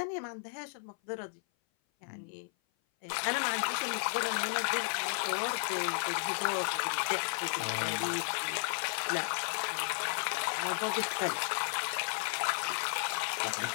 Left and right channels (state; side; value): silent; right; 55 dB below the other